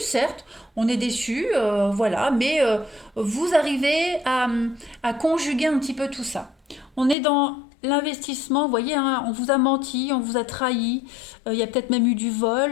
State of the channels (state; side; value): drops out; right; at 7.2 s